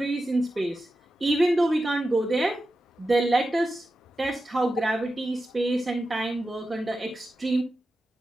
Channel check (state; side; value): normal; both; correlation 0.91